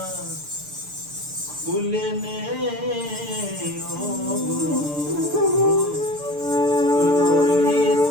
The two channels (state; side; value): late; left; 6.7 ms